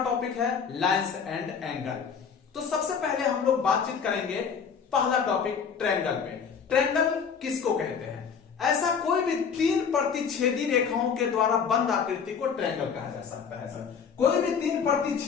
टॉपिक है लाइन्स एंड एंगल। तो सबसे पहले हम लोग बातचीत करेंगे पहला टॉपिक ट्रायंगल पे। ट्रायंगल किसको कहते हैं? ऐसा कोई भी 3 प्रतिच्छेदी रेखाओं के द्वारा बंद आकृति को ट्रायंगल कहा जा सकता है। सर कोई भी 3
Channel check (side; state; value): right; quieter; 6.5 dB